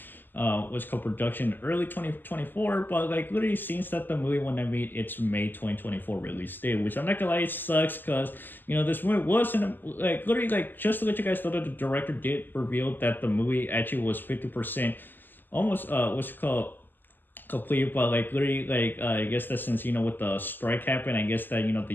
what's called production early 2024, but like literally seems that the movie when I meet its May 2024 release date, which I'm not gonna lie, it sucks because this movie was in like literally like just to let you guys know that the director did reveal that the movie actually was 50% almost what's it called complete, but like literally like I guess that since with the strike happened, I guess that they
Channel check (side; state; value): right; late; 0.091 ms